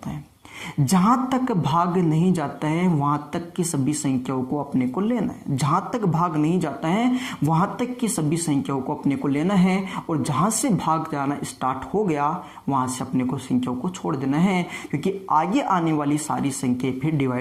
है। जहां तक भाग नहीं जाता है वहां तक की सभी संख्याओं को अपने को लेना है। जहां तक भाग नहीं जाता है वहां तक की सभी संख्याओं को अपने को लेना है, और जहां से भाग जाना स्टार्ट हो गया वहां से अपने को संख्याओं को छोड़ देना है, क्योंकि आगे आने वाली सारी संख्याएं फिर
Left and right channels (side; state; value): both; identical; correlation 1.00